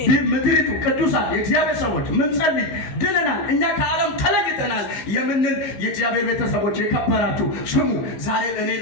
ምድሪቱ ቅዱሳን የእግዚአብሔር ሰዎች ምን ጸልይ ድነናል፣ እኛ ከዓለም ተለይተናል የምንል የእግዚአብሔር ቤተሰቦች የከበራችሁ ስሙ። ዛሬ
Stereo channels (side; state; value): right; late; 16 ms